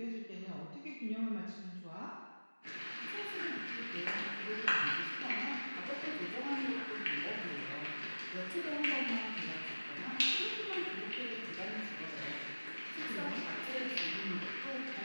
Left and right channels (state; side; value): inverted; both; correlation -1.00